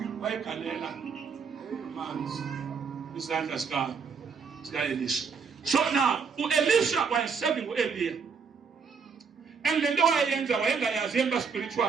wayegalela manzi isandla sika-Elisha. So now u-Elisha wayeserving u-Eliya and le nto wayeyenza wayengayazi emba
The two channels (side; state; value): left; quieter; 5.7 dB